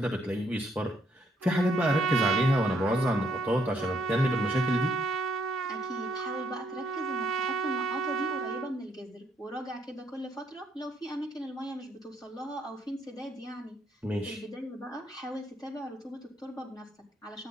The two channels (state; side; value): normal; both; correlation 0.71